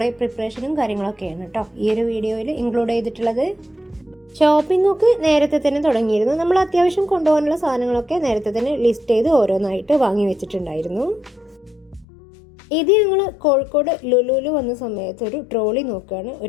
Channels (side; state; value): right; drops out; at 12.1 s